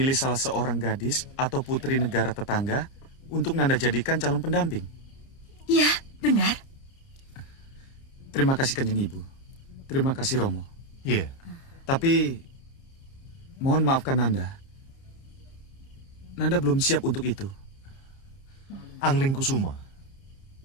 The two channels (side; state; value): right; late; 30 ms